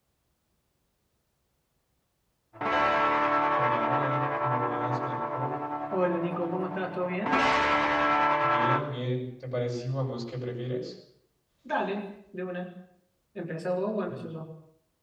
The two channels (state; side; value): identical; both; correlation 1.00